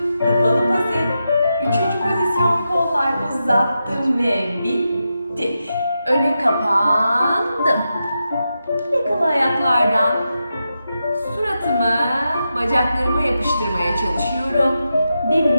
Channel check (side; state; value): both; inverted; correlation -0.88